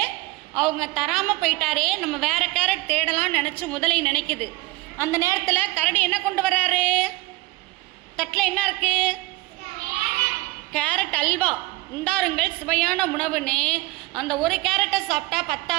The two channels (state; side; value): quieter; left; 20.7 dB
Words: அவங்க தராமல் போயிட்டாரே, நம்ம வேறு கேரட் தேடலாம்னு நினச்சி முதலை நினைக்குது. அந்த நேரத்தில் கரடி என்ன கொண்டு வர்றாரு? தட்டில் என்ன இருக்கு? கேரட் அல்வா. உண்டாருங்கள் சுவையான உணவுன்னு அந்த ஒரு கேரட்டை சாப்பிட்டா